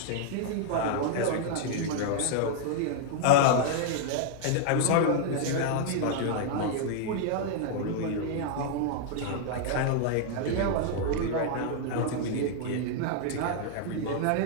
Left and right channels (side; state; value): both; different; correlation 0.00